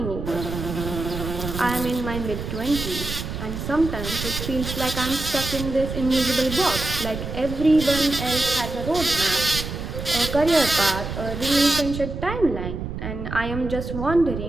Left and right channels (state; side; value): noise; right; rumble, 6 dB below the sound